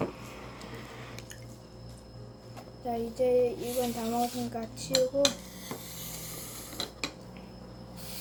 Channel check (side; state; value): both; identical; correlation 1.00